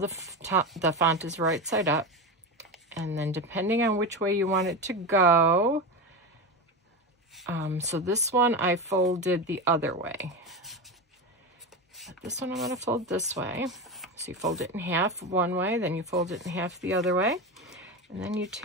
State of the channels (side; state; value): both; normal; correlation 0.20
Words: font is right side up. And then depending on which way you want it to go, so this one I folded the other way. But this one I'm going to fold this way. So you fold it in half one way, then you fold it in half the other way. And then you